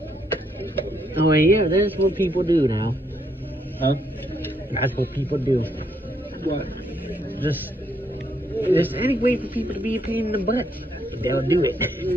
Oh yeah, that's what people do now. Huh? That's what people do. What? Just any way for people to be a pain in the butt, they'll do it.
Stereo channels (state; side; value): normal; both; correlation 0.74